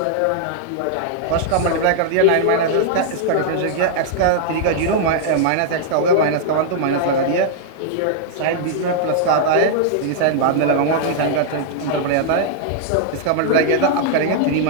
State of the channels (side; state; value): both; different; correlation -0.01